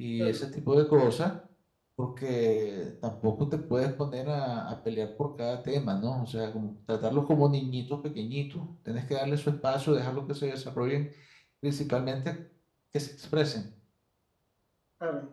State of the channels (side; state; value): both; identical; correlation 1.00